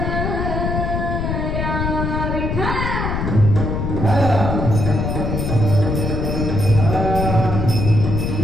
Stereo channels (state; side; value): noise; left; rumble, 1 dB below the sound